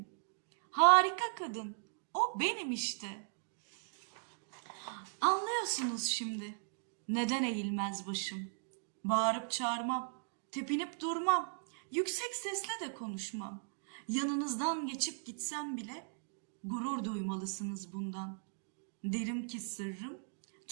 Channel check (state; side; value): silent; left; digital silence